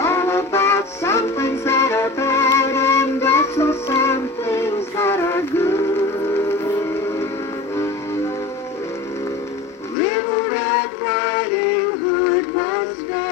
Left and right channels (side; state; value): right; drops out; at 10.0 s